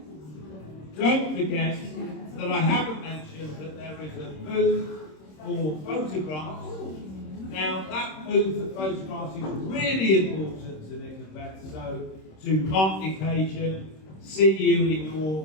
Don't forget that I haven't mentioned that there is a booth for photographs. Now, that booth for photographs is really important to Nick and Beth, so to mark the occasion, see you in your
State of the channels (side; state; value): right; late; 26 ms